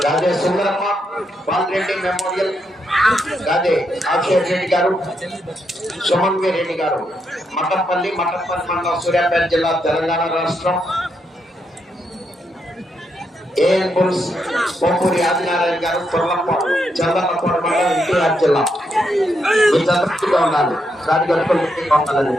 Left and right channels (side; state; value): both; normal; correlation 0.80